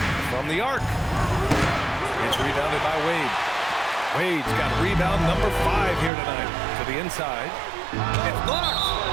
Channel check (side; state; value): left; drops out; at 6.1 s